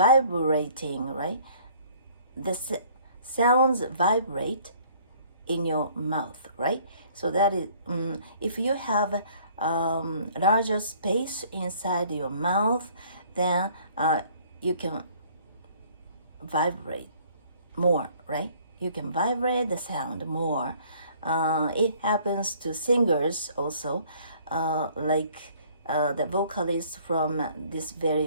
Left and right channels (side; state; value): both; inverted; correlation -0.57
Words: right? The sounds vibrate in your mouth, right? So that is, if you have larger space inside your mouth, then you can vibrate more, right? You can vibrate the sound more. It happens to singers also, like the vocalist from this